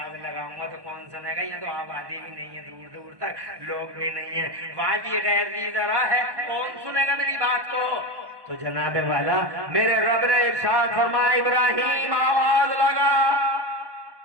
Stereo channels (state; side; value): late; left; 1.1 ms